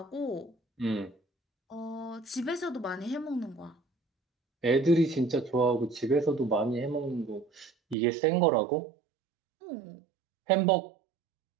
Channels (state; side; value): drops out; left; at 8.0 s